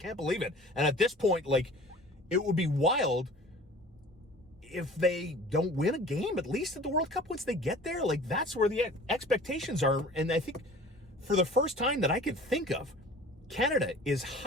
believe it. And at this point, it would be wild if they don't win a game, at least at the World Cup once they get there. That's where the expectations are. And I think for the first time that I could think of, Canada is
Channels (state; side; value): normal; both; correlation 0.44